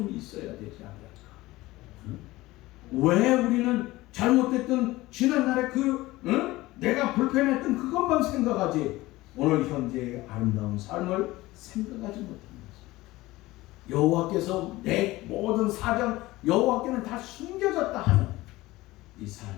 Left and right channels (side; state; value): right; quieter; 18.8 dB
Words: 있어야 되지 않을까? 응? 왜 우리는 잘못됐던 지난날에 내가 불편했던 그것만 생각하지 오늘 현재의 아름다운 삶을 생각하지 못한 것입니다. 여호와께서 내 모든 사정, 여호와께는 다 숨겨졌다 하는 이